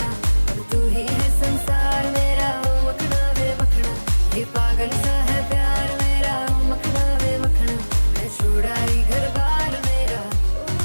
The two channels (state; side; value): inverted; both; correlation -1.00